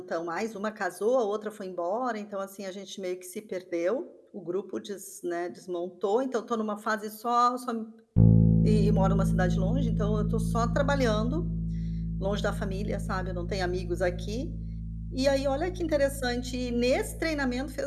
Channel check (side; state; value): both; identical; correlation 1.00